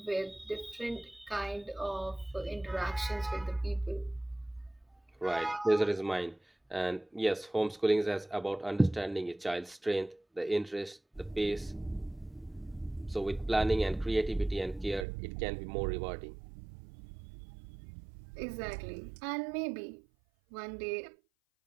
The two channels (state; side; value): drops out; left; at 15.1 s